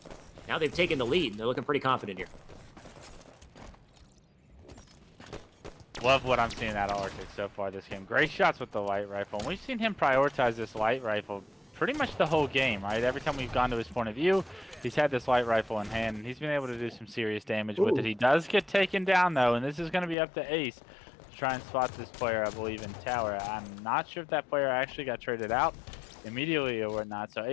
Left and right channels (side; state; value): right; drops out; at 20.2 s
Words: Now they've taken the lead. They're looking pretty confident here. Love what I'm seeing out of Arctic so far this game. Great shots with the light rifle. And we've seen him prioritize this light rifle pretty much the whole game, right? Every time we've gone to his point of view, he's had this light rifle in hand, and he's been able to do some serious damage with it. He does get taken down, though, and this is going to be up to Ace to try and spot this player, I believe, in tower. I'm not sure if that player actually got traded out immediately or whatnot, so